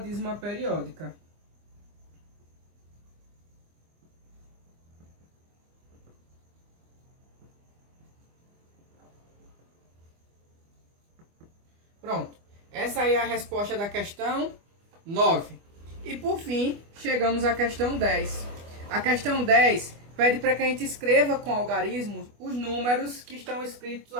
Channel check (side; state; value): left; late; 25 ms